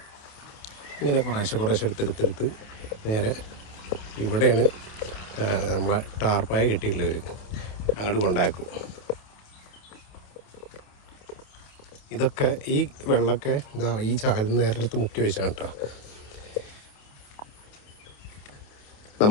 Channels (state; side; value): late; right; 28 ms